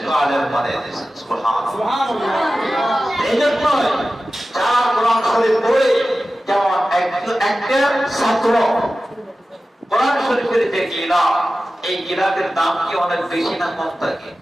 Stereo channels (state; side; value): normal; both; correlation 0.95